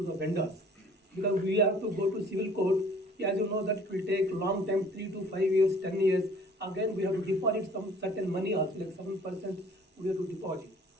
the vendors, because we have to go to civil court. As you know, that it will take long time, 3 to 5 years, 10 years. Again, we have to deposit some certain money also, like 7% we have to deposit.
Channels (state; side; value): normal; both; correlation 0.53